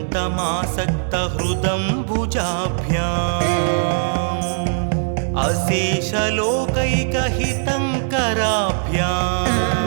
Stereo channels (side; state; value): left; silent; digital silence